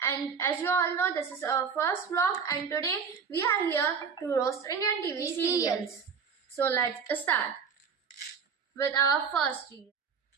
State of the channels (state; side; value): quieter; left; 6.2 dB